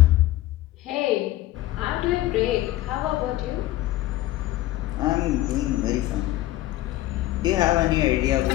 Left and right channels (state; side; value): quieter; right; 15.9 dB